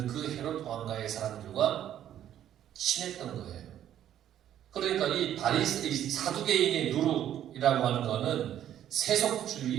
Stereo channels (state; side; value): quieter; left; 11.0 dB